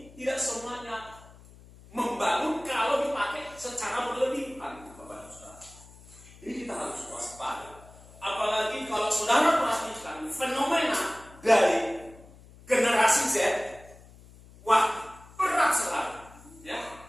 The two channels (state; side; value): noise; left; hum, 22 dB below the sound